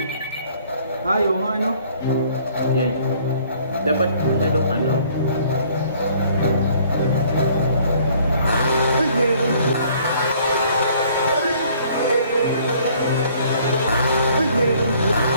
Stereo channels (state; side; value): inverted; both; correlation -0.59